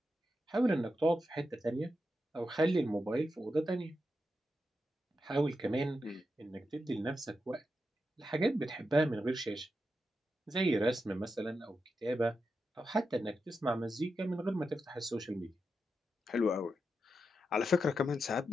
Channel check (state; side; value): normal; both; correlation 0.87